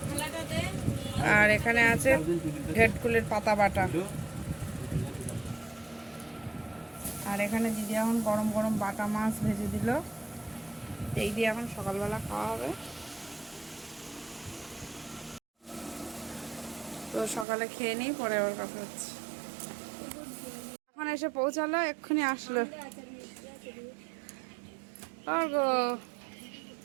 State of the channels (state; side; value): drops out; left; at 17.4 s